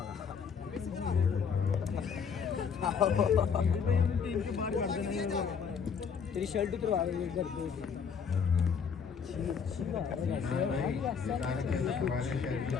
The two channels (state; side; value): quieter; right; 6.4 dB